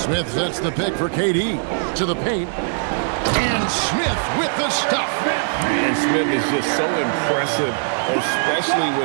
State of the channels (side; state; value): left; silent; digital silence